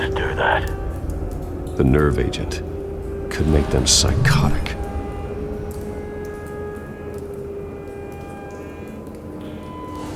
do that? The nerve agent could make them psychotic.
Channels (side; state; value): both; identical; correlation 1.00